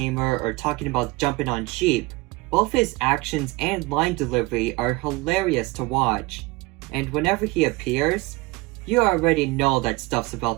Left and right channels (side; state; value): left; quieter; 22.7 dB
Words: or talking about jumping on sheep, both his actions and line delivery are hilarious to watch. And whenever he appears, you already know that stuff's